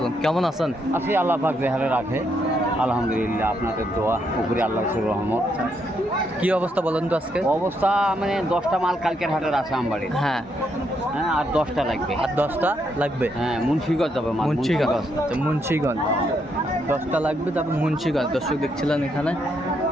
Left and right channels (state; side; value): normal; both; correlation 0.77